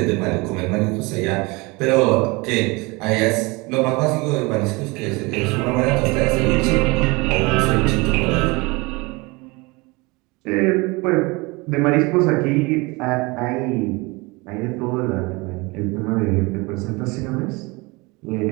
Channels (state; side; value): quieter; left; 25.4 dB